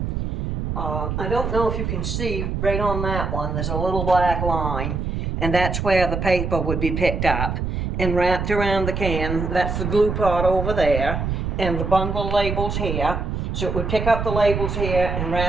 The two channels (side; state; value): right; noise; rumble, 2 dB below the sound